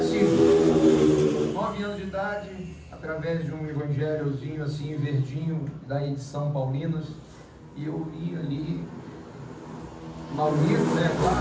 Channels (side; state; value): both; identical; correlation 1.00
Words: 9 anos de idade, através de um evangelhozinho assim, verdinho, da edição Paulinas, e eu li ali, mal lido, né,